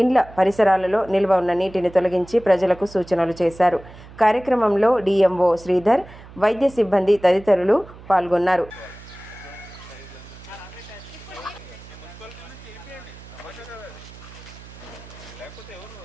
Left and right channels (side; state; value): right; noise; hum, 19 dB below the sound